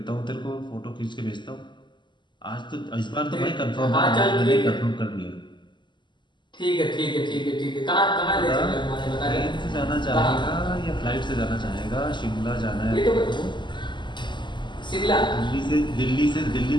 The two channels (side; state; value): right; late; 0.22 ms